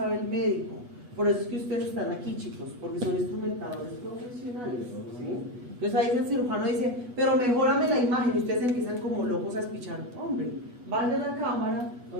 el médico. Por eso es que ustedes están aquí, chicos, porque son instrumentadores profesionales, ¿sí? Entonces ahí el cirujano dice, pero mejórame la imagen, y ustedes empiezan como locos a espichar. Hombre, vaya a la cámara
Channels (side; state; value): left; late; 8.1 ms